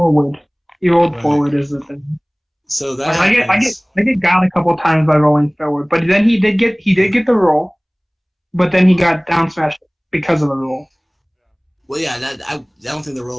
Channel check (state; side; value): identical; both; correlation 1.00